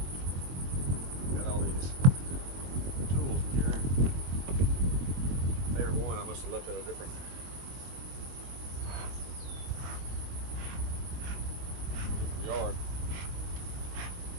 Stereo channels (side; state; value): left; late; 22 ms